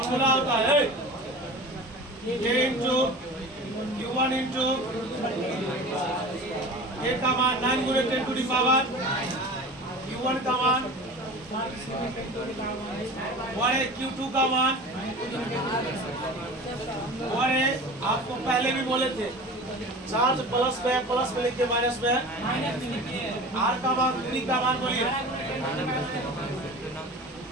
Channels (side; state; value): both; normal; correlation 0.36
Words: होता है a into q1 into a का मान 9 गुणे 10 टू दी पावर, q1 का मान और q2 का मान, और आपको पहले भी बोले थे चार्ज प्लस में लिखिए, माइनस में r का मान, दूरी का मान बोलिए।